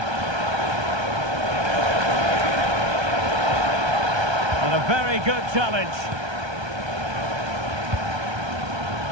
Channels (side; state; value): left; late; 1.3 ms